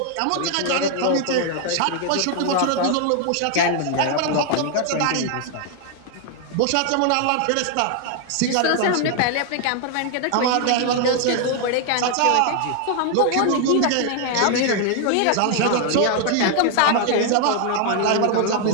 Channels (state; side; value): different; both; correlation 0.00